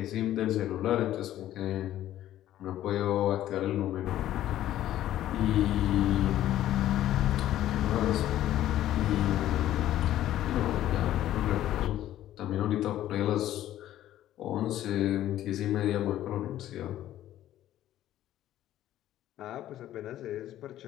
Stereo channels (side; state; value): right; quieter; 13.0 dB